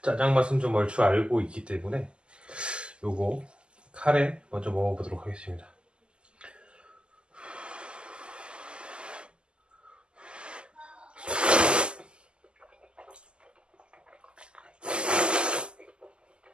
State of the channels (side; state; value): left; late; 0.050 ms